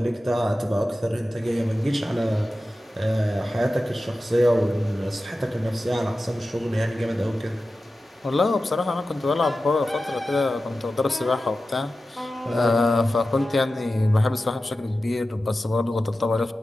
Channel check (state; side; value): normal; both; correlation 0.94